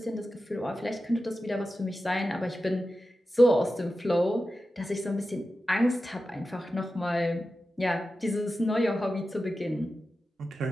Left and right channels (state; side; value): normal; both; correlation 0.92